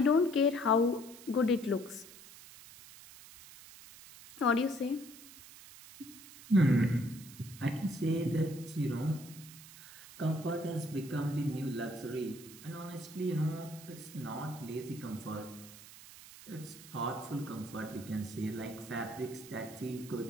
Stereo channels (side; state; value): right; noise; hiss, 17 dB below the sound